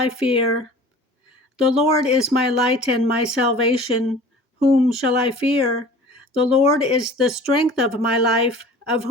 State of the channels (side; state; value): both; normal; correlation 0.44